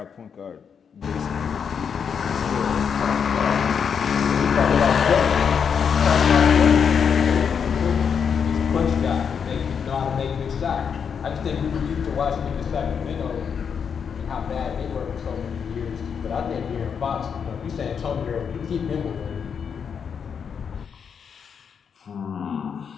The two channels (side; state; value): right; quieter; 6.9 dB